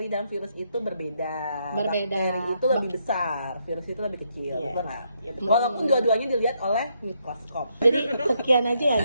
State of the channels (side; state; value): both; inverted; correlation -0.76